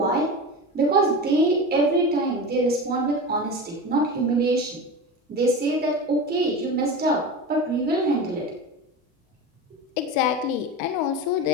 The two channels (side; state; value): both; normal; correlation 0.27